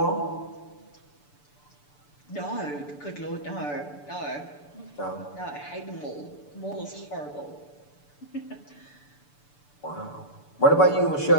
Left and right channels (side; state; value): right; late; 6.9 ms